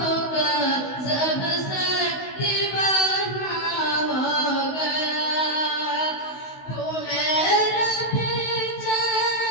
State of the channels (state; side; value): late; right; 16 ms